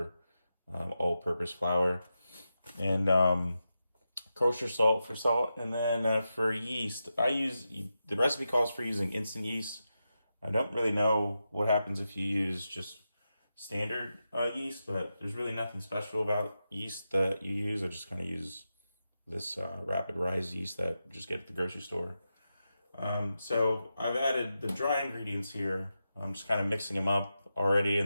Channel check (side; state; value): both; inverted; correlation -0.89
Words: all-purpose flour. And kosher salt for salt. And then for yeast, the recipe calls for using instant yeast. I don't really know what happens if you use just standard yeast, but there's really nothing special about yeast that you use. I just kind of use this rapid rise yeast that you just get at the grocery store. So I've added the dry ingredients here. I'm just kind of mixing them up already,